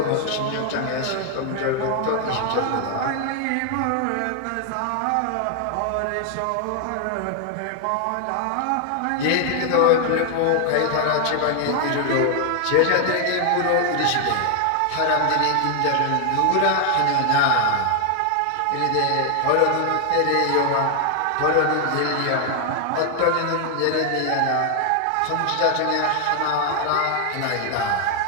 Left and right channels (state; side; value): different; both; correlation 0.00